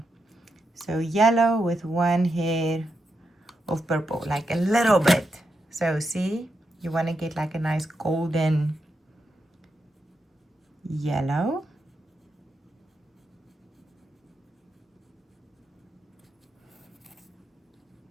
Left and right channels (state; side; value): normal; both; correlation 0.85